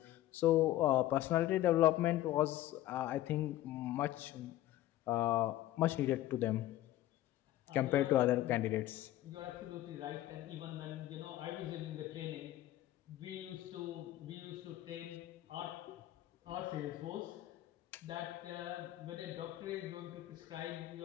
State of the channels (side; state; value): right; quieter; 14.5 dB